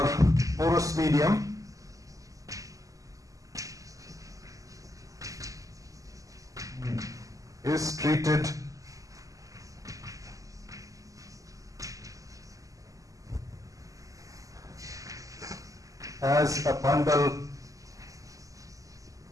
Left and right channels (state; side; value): late; left; 0.16 ms